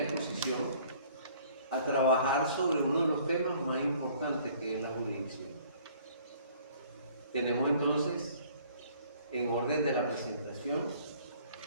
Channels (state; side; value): inverted; both; correlation -0.56